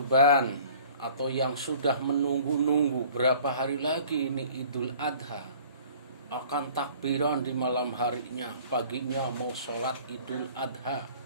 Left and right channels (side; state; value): both; inverted; correlation -0.50